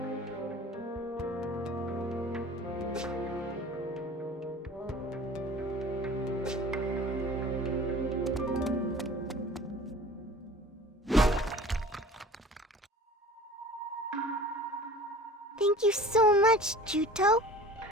Thank you so much, Juto.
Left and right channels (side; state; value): both; normal; correlation 0.42